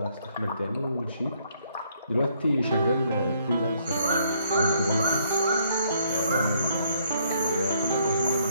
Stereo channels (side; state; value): both; inverted; correlation -0.68